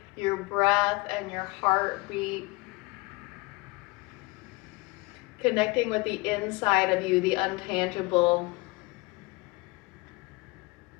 your breath and your heartbeat. Connecting with the inside of you, the untangible.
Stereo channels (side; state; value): right; quieter; 24.5 dB